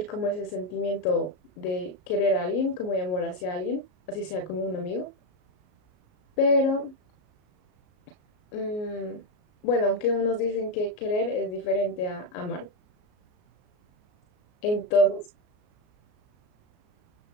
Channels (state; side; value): late; right; 33 ms